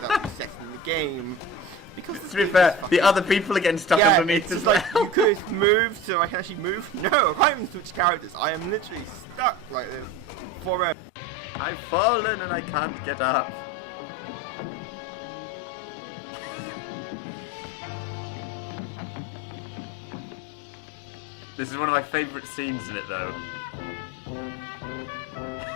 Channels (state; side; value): drops out; right; at 11.0 s